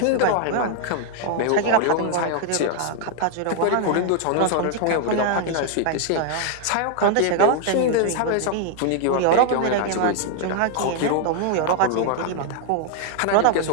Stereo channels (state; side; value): different; both; correlation 0.00